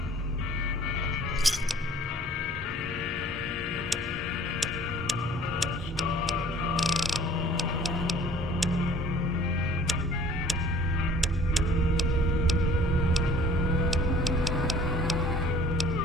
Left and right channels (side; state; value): both; normal; correlation 0.51